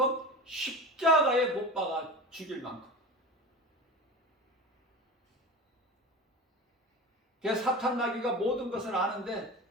십자가에 못 박아 죽일 만큼. 그래서 사탄 마귀가 모든 것을 아는데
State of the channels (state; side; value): normal; both; correlation 0.30